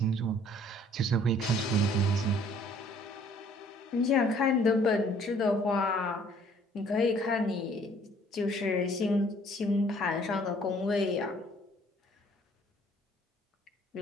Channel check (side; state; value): both; normal; correlation 0.59